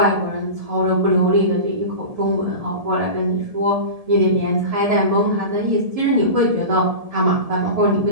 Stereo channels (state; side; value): late; left; 1.7 ms